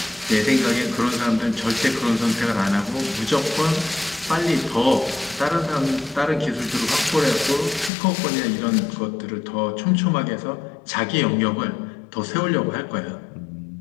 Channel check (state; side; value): drops out; right; at 7.9 s